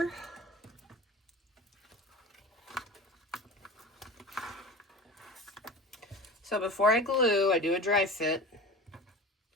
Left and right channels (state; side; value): normal; both; correlation 0.34